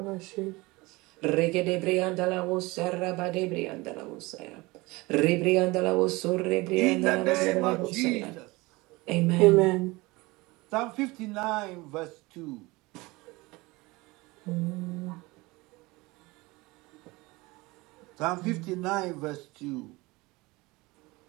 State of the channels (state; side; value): quieter; left; 22.7 dB